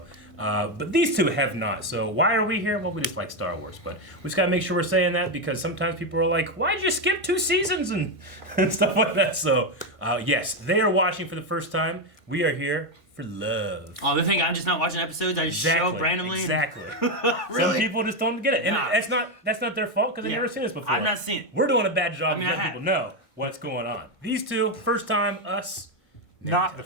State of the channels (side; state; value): right; late; 1.5 ms